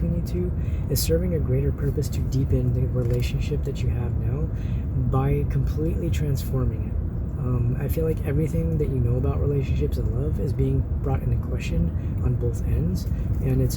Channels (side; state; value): both; identical; correlation 1.00